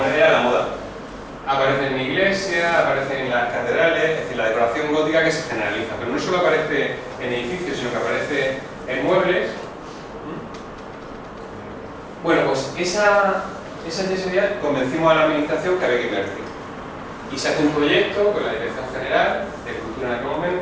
era la moda. Aparece en iglesias, aparece en las catedrales, es decir, la decoración gótica que se generaliza, pero no solo aparece en edificios, sino que aparece en muebles. Bueno, pues esa yesería convencimos a la administración que había que invertir. Y se hace un proyecto con la Dirección General de Cultura en aquel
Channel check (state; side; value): identical; both; correlation 1.00